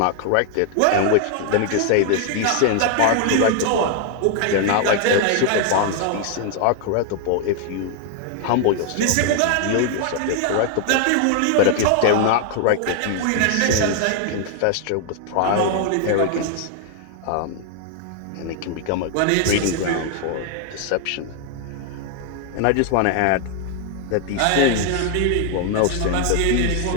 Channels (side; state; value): both; different; correlation 0.00